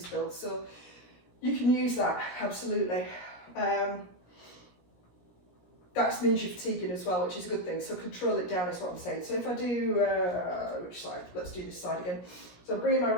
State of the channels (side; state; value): right; late; 17 ms